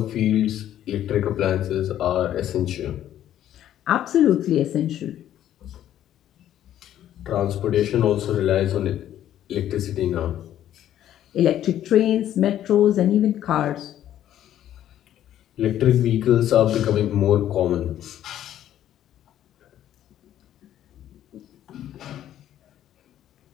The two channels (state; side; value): quieter; right; 11.6 dB